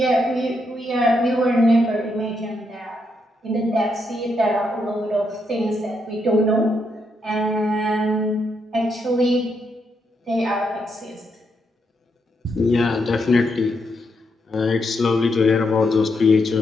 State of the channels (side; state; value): both; normal; correlation 0.80